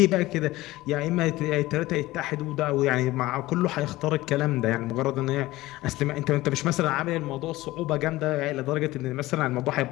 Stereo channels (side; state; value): right; quieter; 18.0 dB